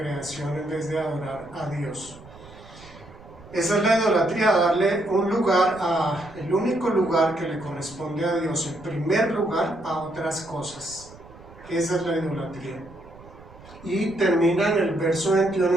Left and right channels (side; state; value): right; noise; rumble, 21 dB below the sound